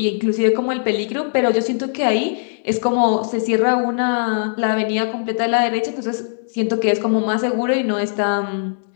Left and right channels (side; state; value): right; silent; digital silence